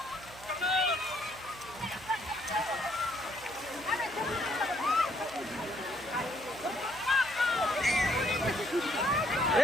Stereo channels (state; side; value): noise; right; hum, 19 dB below the sound